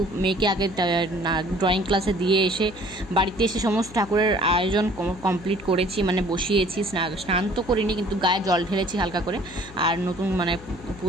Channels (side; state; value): left; noise; hum, 18 dB below the sound